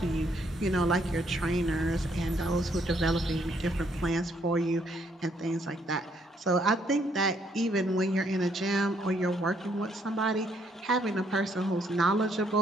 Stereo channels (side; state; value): both; normal; correlation 0.70